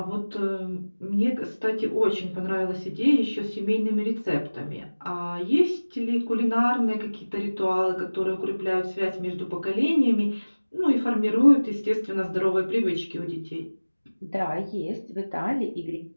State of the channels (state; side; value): inverted; both; correlation -1.00